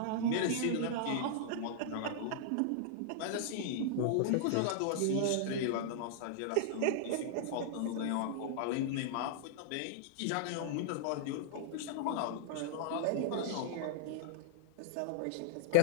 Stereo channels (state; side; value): different; both; correlation -0.01